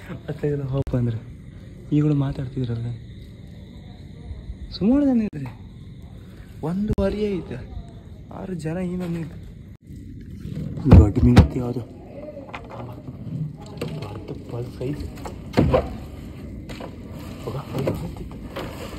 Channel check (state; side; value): identical; both; correlation 1.00